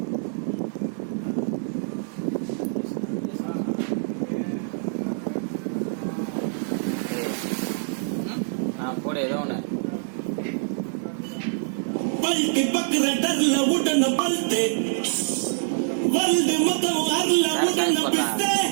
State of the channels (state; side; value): silent; left; 61 dB below the other